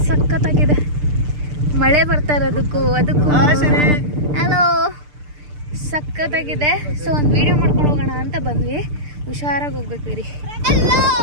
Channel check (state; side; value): late; left; 6.7 ms